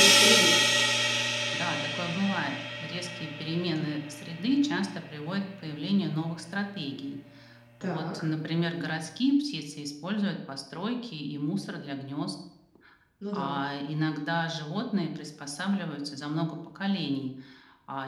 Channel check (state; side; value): identical; both; correlation 1.00